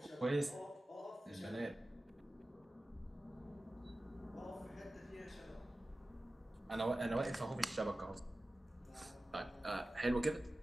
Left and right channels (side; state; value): both; normal; correlation 0.95